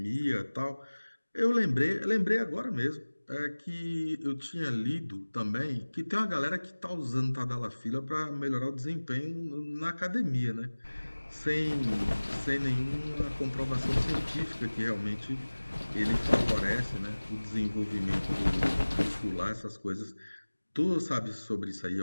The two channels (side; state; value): both; inverted; correlation -1.00